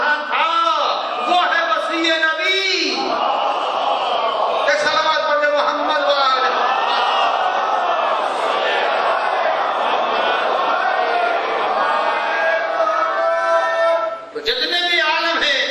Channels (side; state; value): both; identical; correlation 1.00